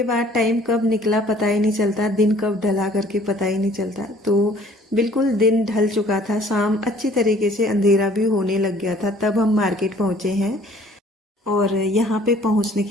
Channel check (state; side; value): normal; both; correlation 0.55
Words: बाद टाइम कब निकला पता ही नहीं चलता, दिन कब ढला करके पता ही नहीं चलता। तो बिल्कुल दिन ढल चुका था, शाम अच्छी तरीके से अंधेरा भी होने लग गया था, तब हम मार्केट पहुंचे हैं। और यहाँ पे पहुँचने